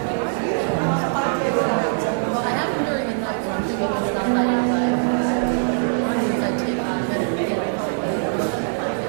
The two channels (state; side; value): silent; left; digital silence